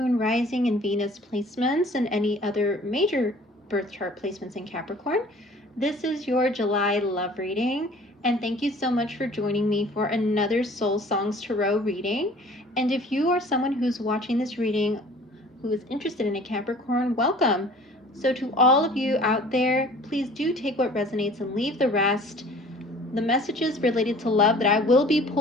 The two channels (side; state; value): both; normal; correlation 0.49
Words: Rising, and Venus placements, and any other major birth chart placements in Capricorn. This is your July love reading, and thank you so much for joining me for another Soul Songs Tarot reading. And if you are someone who's watching this reading who is interested in a Capricorn, welcome. So to all of you out there, please do take what resonates and leave the rest. The messages related to love that I will be